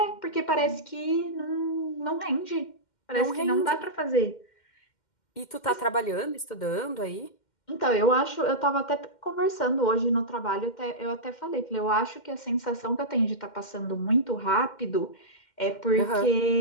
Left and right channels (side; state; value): right; late; 2.1 ms